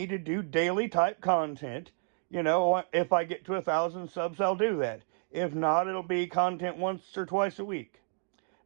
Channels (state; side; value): silent; left; 57 dB below the other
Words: to do daily type content, you know, if I get to 1,000 subs, I'll do that. If not, it'll be content once or twice a week.